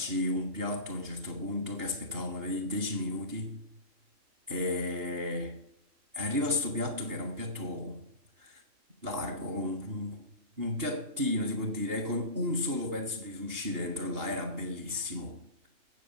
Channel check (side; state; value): left; late; 2.8 ms